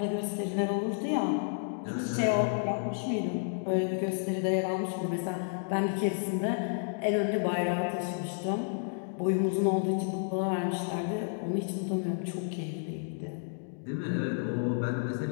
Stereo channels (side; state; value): right; silent; digital silence